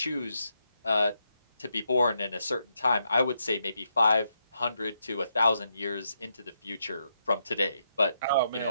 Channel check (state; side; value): inverted; both; correlation -0.81